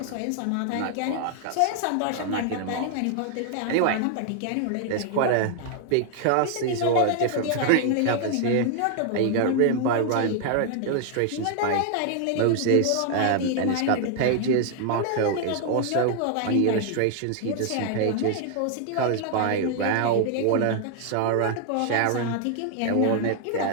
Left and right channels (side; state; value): both; different; correlation 0.00